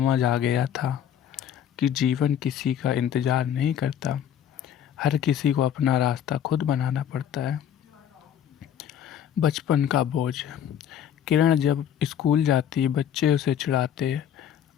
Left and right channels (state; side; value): quieter; right; 9.5 dB